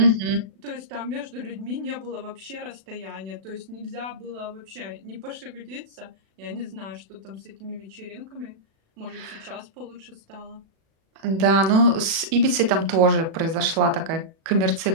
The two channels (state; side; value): late; left; 36 ms